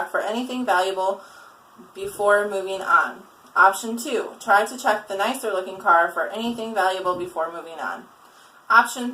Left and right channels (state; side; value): identical; both; correlation 1.00